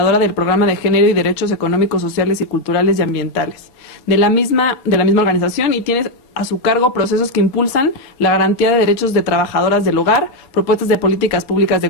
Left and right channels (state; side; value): late; right; 4.3 ms